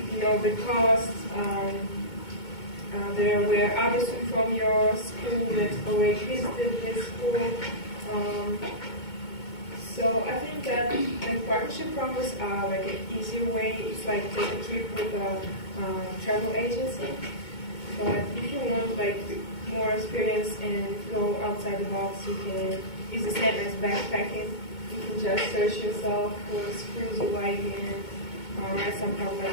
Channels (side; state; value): right; late; 2.2 ms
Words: the costs. There were others from your school that already visited this school. So I think that partnership programs are like an easier way. It's like take a trip with a travel agency. But if you want like more experience and go outside the box, it's the same as backpacking. You can just search yourself for schools you like and write some